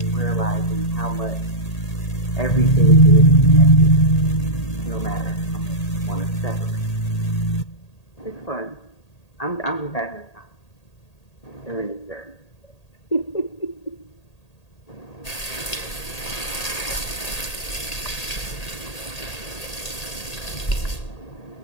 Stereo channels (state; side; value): late; right; 1.8 ms